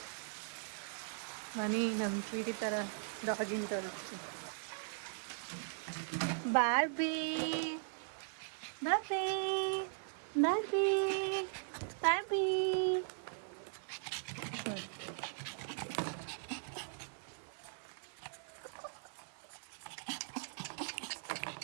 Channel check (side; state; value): left; silent; digital silence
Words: ಮನಿ. ನಮ್ಮ ಸ್ವೀಟಿ ಥರ ಡಾಗಿನ ಥರ. Barbie Barbie Barbie Barbie.